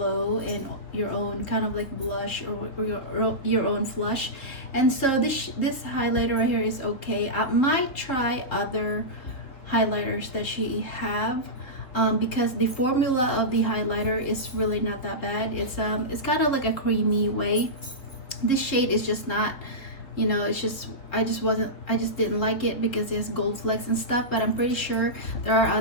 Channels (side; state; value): right; late; 4.0 ms